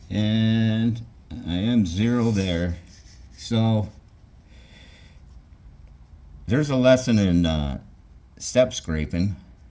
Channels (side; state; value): both; identical; correlation 1.00